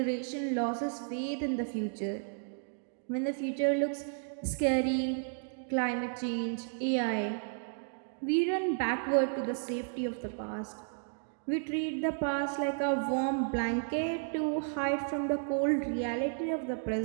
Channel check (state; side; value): silent; left; digital silence